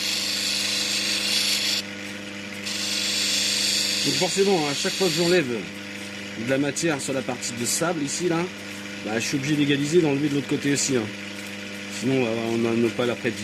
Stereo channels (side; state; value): both; identical; correlation 1.00